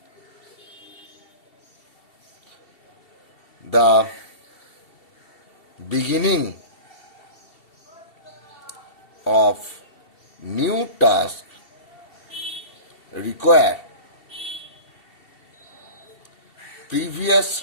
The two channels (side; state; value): right; late; 2.7 ms